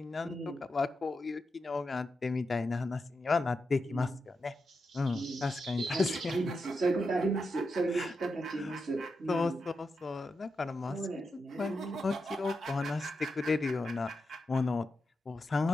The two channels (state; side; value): normal; both; correlation 0.87